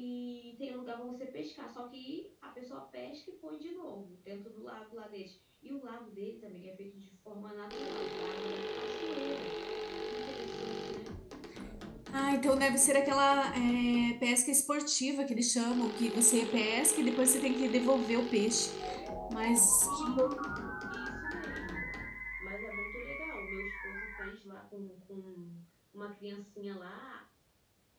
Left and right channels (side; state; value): both; identical; correlation 1.00